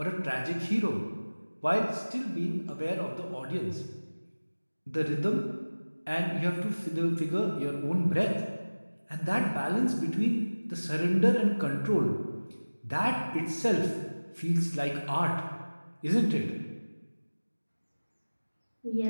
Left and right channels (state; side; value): inverted; both; correlation -1.00